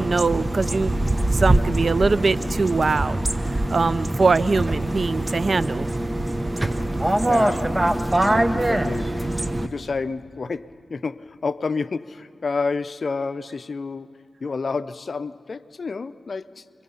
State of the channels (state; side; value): normal; both; correlation 0.95